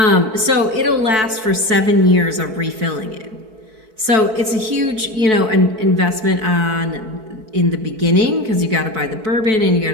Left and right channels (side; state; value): left; late; 4.6 ms